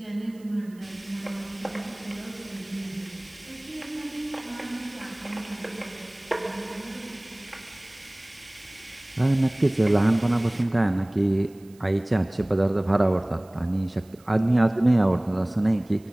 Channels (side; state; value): right; noise; hiss, 29 dB below the sound